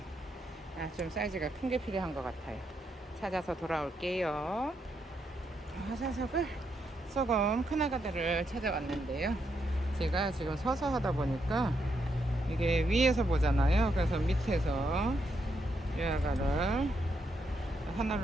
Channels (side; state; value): both; normal; correlation 0.79